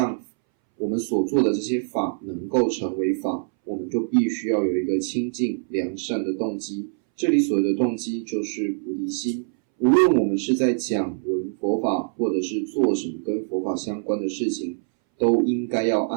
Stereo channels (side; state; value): left; silent; 62 dB below the other